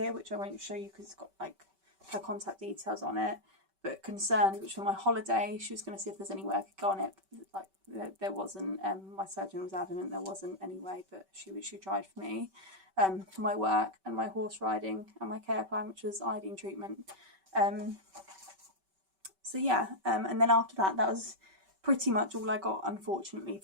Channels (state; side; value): late; left; 5.2 ms